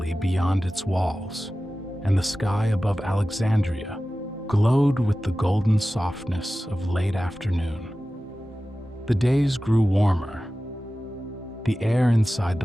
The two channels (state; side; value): normal; both; correlation 0.95